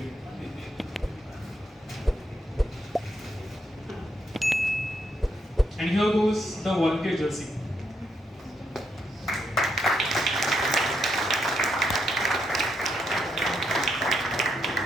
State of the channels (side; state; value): both; normal; correlation 0.79